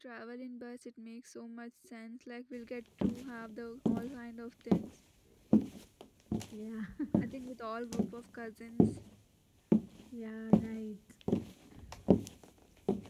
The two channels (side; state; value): both; identical; correlation 1.00